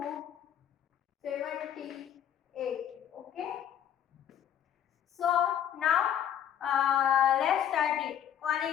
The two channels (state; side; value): quieter; right; 9.9 dB